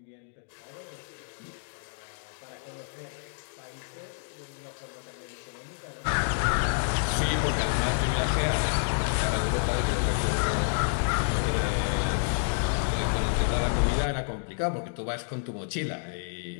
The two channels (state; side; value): silent; right; digital silence